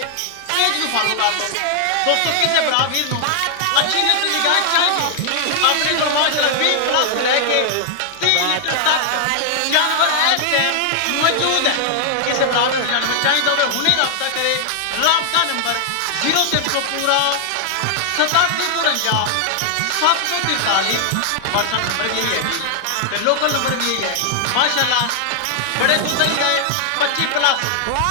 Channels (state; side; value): different; both; correlation 0.00